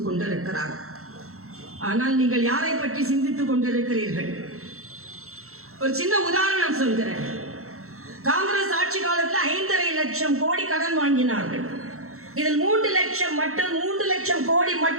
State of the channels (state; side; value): late; left; 0.63 ms